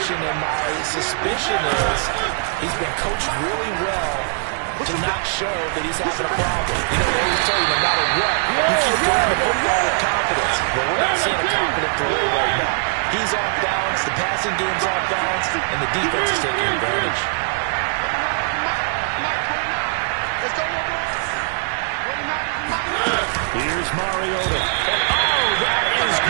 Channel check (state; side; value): silent; left; 62 dB below the other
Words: and my suspicion is he's been coached really well to not show that he's having a problem. You know, they always tell you no matter what, you keep throwing the football with confidence. But we're not seeing a confident thrower right now. He's off balance, the passing game's off balance, and the defense is taking advantage. Here's Mariota. Oh, that is